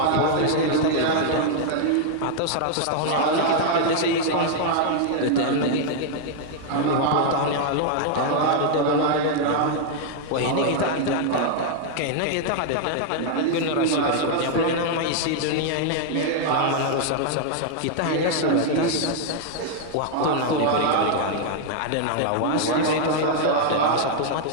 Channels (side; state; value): both; different; correlation 0.00